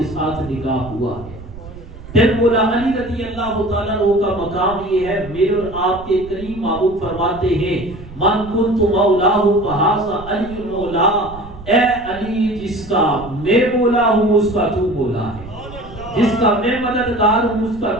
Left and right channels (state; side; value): noise; right; rumble, 16 dB below the sound